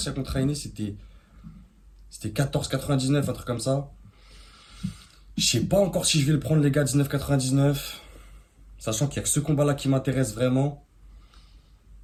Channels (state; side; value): identical; both; correlation 1.00